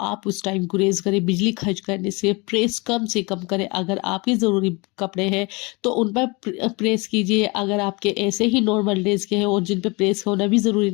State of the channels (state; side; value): quieter; right; 27.3 dB